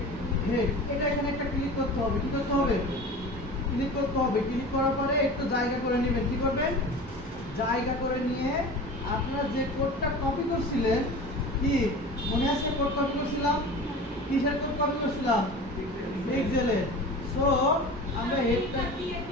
হেড। এটা এখানে একটা ক্লিক করতে হবে। কি করতে হবে? ক্লিক করতে হবে। ক্লিক করার পরে একটু জায়গা করে নেবেন। কি করবেন? জায়গা করে নিয়ে আপনারা যে কোডটা কপি করছিলেন, কি মনে আছে? কোড কপি করছিলাম, কিসের কোড কপি করছিলাম? পিক্সেলে। সো আমরা হেডটা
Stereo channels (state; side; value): normal; both; correlation 0.35